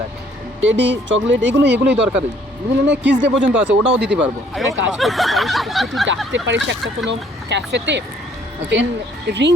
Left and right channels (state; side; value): normal; both; correlation 0.62